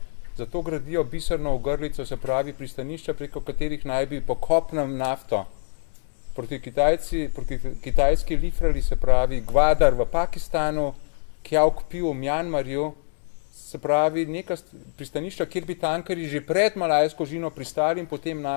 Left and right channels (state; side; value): silent; right; digital silence